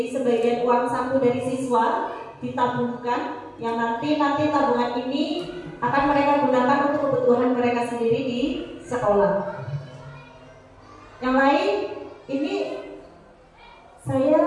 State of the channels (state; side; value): identical; both; correlation 1.00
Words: sebagian uang saku dari siswa ditabungkan, yang nanti tabungan ini akan mereka gunakan untuk kebutuhan mereka sendiri di sekolah. Yang lain, ini